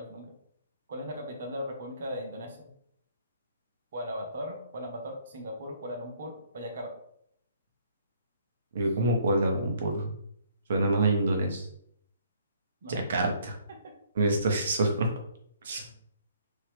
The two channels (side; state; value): both; inverted; correlation -0.62